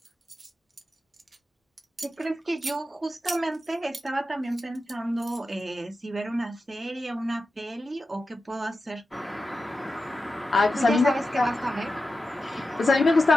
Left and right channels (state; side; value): normal; both; correlation 0.91